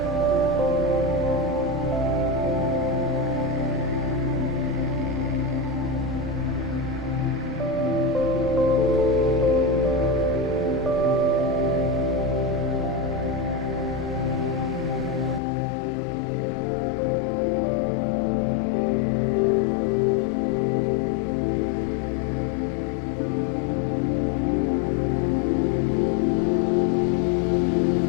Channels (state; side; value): drops out; right; at 15.4 s